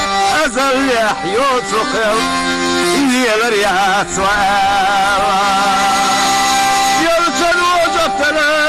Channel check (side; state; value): both; identical; correlation 1.00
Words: أزل يحيو تخل هي الرياء سوال يلتد وجفنا